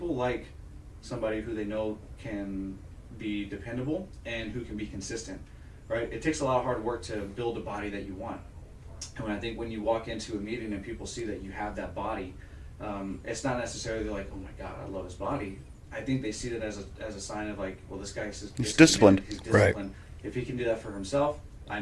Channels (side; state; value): both; identical; correlation 1.00